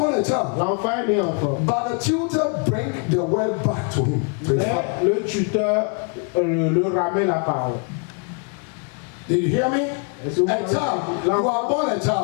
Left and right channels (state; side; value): quieter; right; 38.6 dB